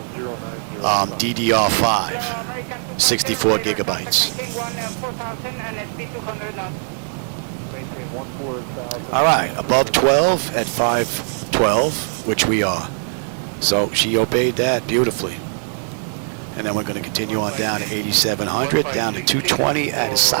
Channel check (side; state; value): left; silent; 65 dB below the other